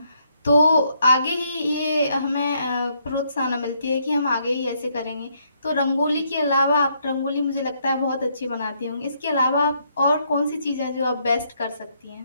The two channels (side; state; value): both; inverted; correlation -0.72